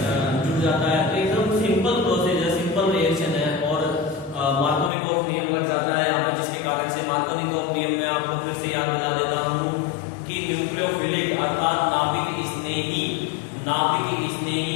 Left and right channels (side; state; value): right; drops out; at 4.9 s